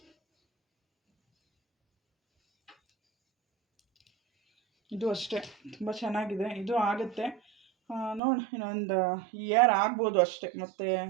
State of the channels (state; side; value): drops out; left; at 8.2 s